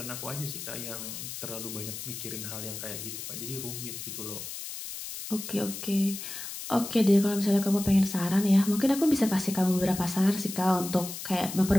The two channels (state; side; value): noise; left; hiss, 8 dB below the sound